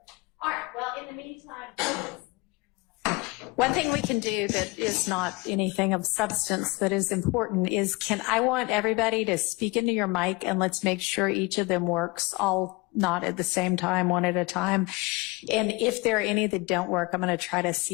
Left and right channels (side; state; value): right; quieter; 24.2 dB